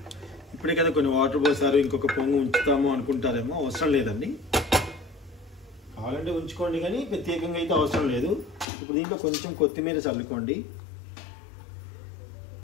ఇప్పుడే కదా కొన్ని వాటర్ పోసారు, ఇంకొక పొంగు ఉంచుతాము అనుకుంటారేమో, అవసరం లేదండి. కావాలంటే ఉంచుకోండి, కానీ ప్రత్యేకంగా అయితే అవసరం లేదు. ఇప్పుడు దీంట్లో కొంచెం కొత్తిమీర చల్లుకోండి.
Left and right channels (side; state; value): right; drops out; at 8.7 s